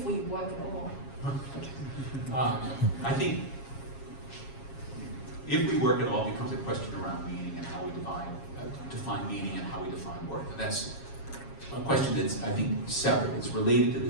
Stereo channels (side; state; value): right; late; 7.3 ms